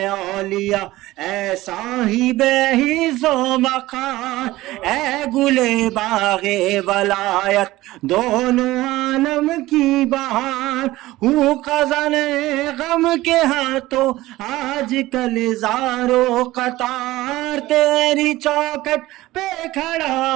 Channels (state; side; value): quieter; left; 17.5 dB